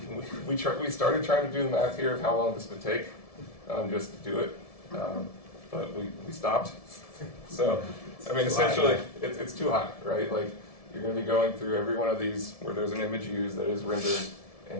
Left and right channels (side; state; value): right; late; 1.7 ms